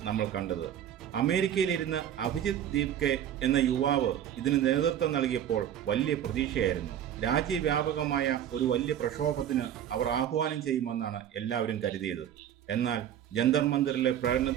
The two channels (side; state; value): left; quieter; 10.3 dB